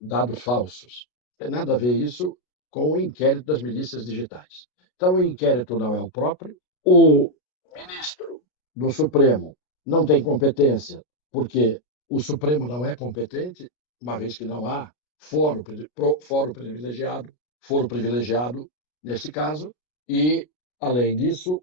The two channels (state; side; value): late; right; 33 ms